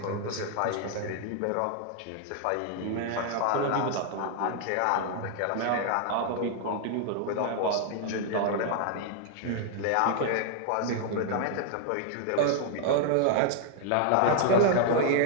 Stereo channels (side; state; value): both; different; correlation -0.01